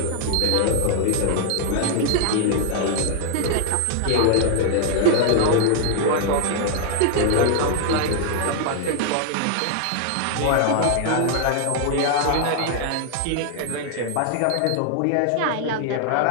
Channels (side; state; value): both; different; correlation 0.00